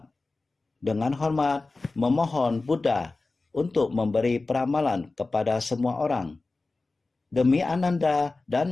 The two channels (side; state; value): right; quieter; 3.5 dB